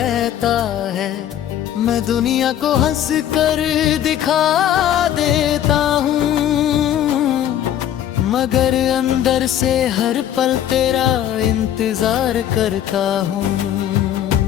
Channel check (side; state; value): right; quieter; 11.0 dB